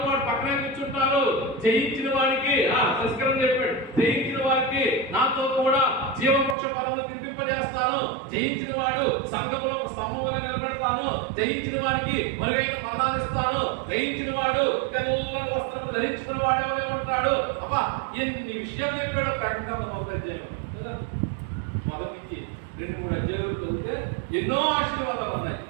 పాటు పక్కనే కూర్చుంటారు, జయించిన వారికి సంస్కరణ చెప్పాడు, జయించిన వారికి నాతో కూడా జీవవృక్ష ఫలములు తినిపింపజేస్తాను, జయించిన వాడు సంఘములో స్తంభం వలె నిలబెడతాను, జయించిన వారికి మరుగైన మందానిస్తాను, జయించిన వాడు తెల్లని వస్త్రం ధరించుకున్న వాడే వలె ఉంటాడు. అబ్బా ఎన్ని విషయాలు చెప్పాడో ప్రకటన మొదటి అధ్యాయం. మొదటి 2-3 అధ్యాయులు చదివితే ఎన్నో ఆశీర్వాదాలు ఉన్నాయి.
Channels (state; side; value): drops out; left; at 6.6 s